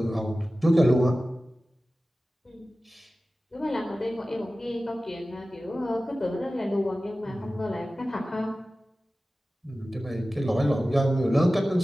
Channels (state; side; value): normal; both; correlation 0.96